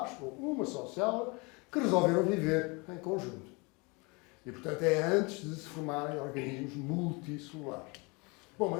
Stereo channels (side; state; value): right; quieter; 28.7 dB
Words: ou uma só célula, que resolveram viver em conjunto. E, portanto, é antes de se formarem organismos multicelulares. Bom,